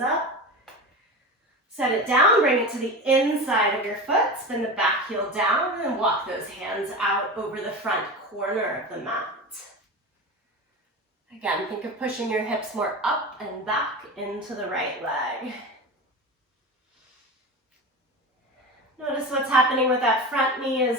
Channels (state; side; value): normal; both; correlation 0.27